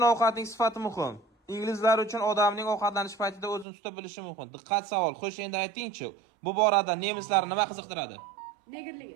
ovqatning sifati muhim. Inglizlar uchun odamning ovqatlanish paytida o'zini tuta bilishi muhim. Diqqat savol. Xo'sh, endi ayting-chi, bu borada nemislarni nima qiziqtiradi? Negerligi.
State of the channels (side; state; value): left; drops out; at 3.7 s